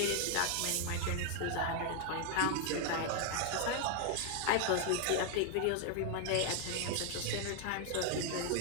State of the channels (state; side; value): different; both; correlation 0.00